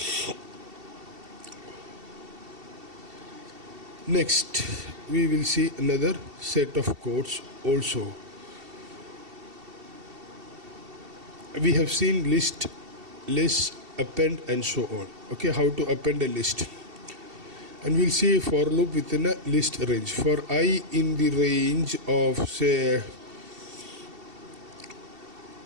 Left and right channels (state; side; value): late; left; 2.7 ms